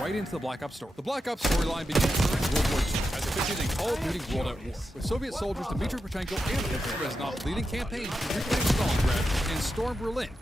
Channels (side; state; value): both; normal; correlation 0.88